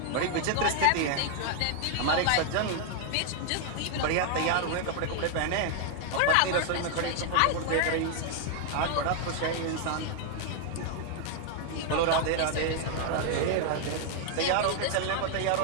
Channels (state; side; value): different; both; correlation 0.00